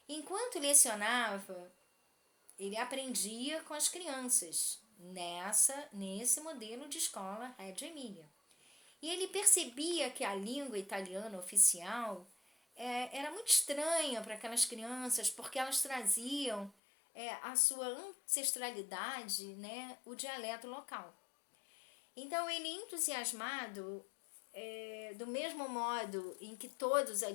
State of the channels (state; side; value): drops out; right; at 16.7 s